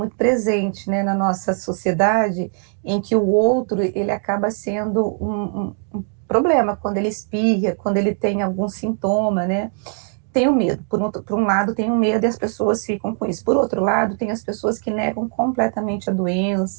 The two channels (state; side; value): silent; left; 55 dB below the other